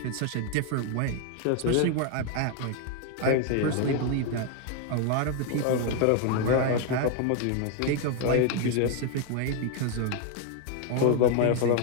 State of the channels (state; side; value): different; both; correlation 0.00